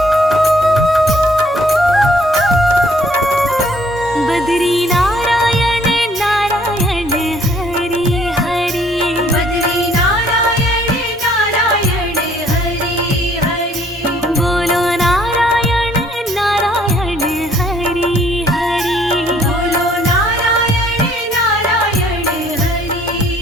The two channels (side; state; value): both; normal; correlation 0.62